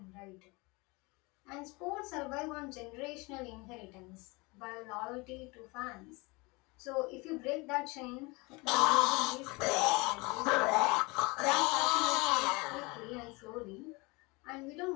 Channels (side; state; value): right; quieter; 26.0 dB